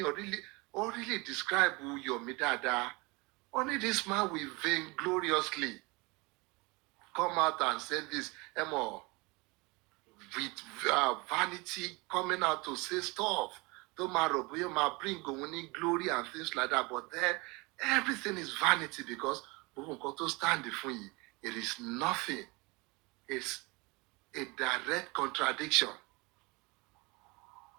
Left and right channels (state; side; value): quieter; left; 26.1 dB